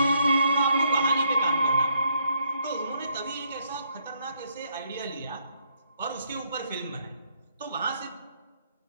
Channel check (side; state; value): both; inverted; correlation -0.72